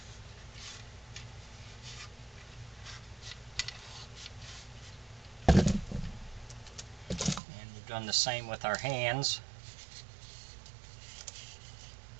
Done the same with our hands.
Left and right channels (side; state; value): left; drops out; at 7.4 s